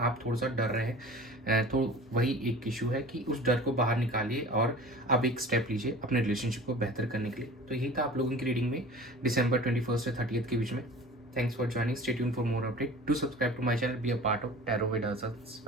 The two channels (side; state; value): both; normal; correlation 0.41